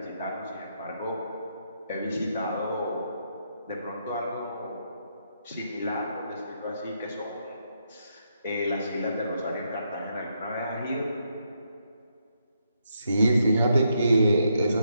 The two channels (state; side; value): inverted; both; correlation -0.78